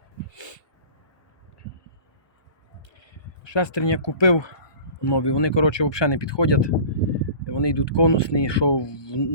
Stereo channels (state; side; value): late; right; 1.2 ms